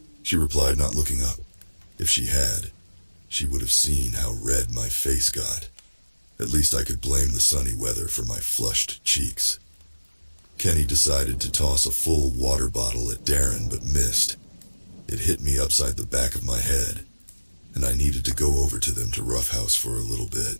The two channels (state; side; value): inverted; both; correlation -1.00